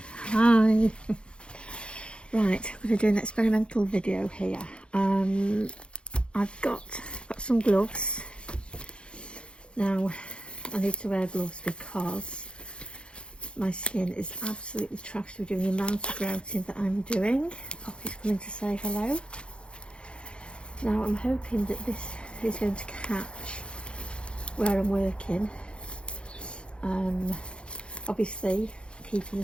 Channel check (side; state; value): right; late; 0.056 ms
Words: hi. Right, I'm going to do an experimental video here. I've got some gloves. Now, I need to wear gloves because my skin is absolutely trashed with doing the amount of grouting that I'm doing. Poppy's coming to say hello. Now, I'm hoping that this is going to catch where I'm working. Obviously, keeping